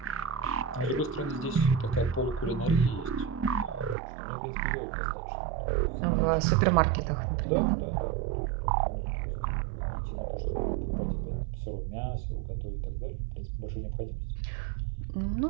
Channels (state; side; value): drops out; left; at 4.0 s